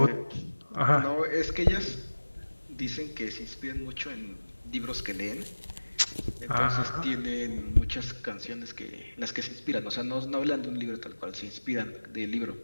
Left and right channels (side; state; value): both; inverted; correlation -1.00